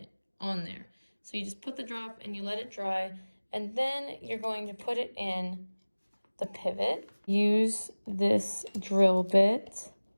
on there. So you just put the drop and you let it dry, and then you're going to put it in the pivot. Use this drill bit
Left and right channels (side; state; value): both; inverted; correlation -1.00